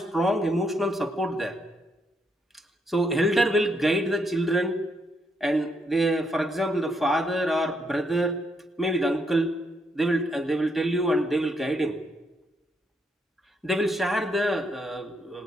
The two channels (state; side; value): normal; both; correlation 0.76